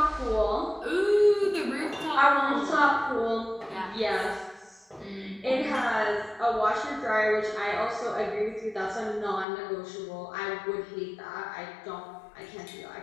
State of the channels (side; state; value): right; drops out; at 9.5 s